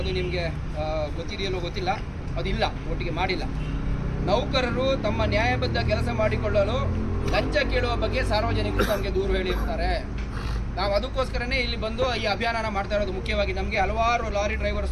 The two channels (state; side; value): identical; both; correlation 1.00